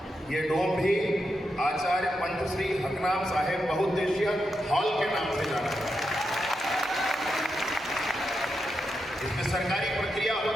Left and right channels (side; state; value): both; normal; correlation 0.86